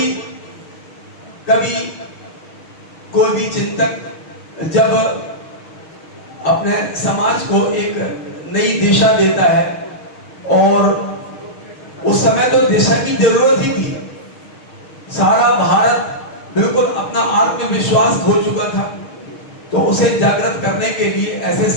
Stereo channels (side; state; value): right; late; 6.4 ms